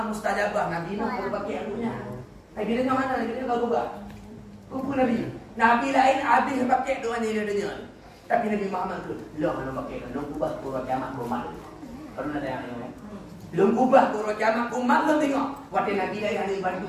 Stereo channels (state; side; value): identical; both; correlation 1.00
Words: mustajabah. Nabi kalau pakai anunya. Nabi Nuh mana? Nabi Nuh kalau buat. Kumpul Nabi. Nabi lain habis pakai doa ni dia. Tapi Nabi Muhammad tu, loh nak pakai belum ubah kurang kiamat umat. Kalau nak tengok ni. Belum ubah kurang kiamat umat belum tengok. Waktu Nabi lain ada bantu